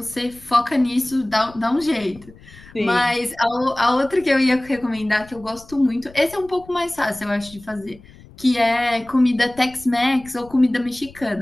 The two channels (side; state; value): left; noise; rumble, 22 dB below the sound